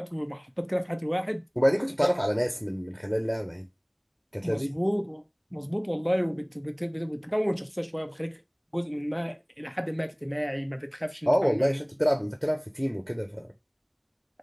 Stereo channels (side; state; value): both; identical; correlation 1.00